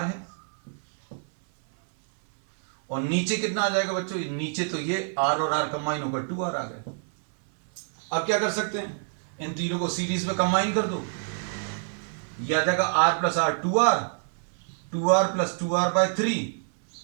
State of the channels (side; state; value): left; silent; 60 dB below the other